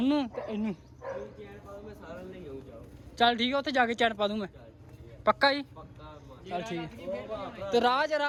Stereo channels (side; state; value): both; identical; correlation 1.00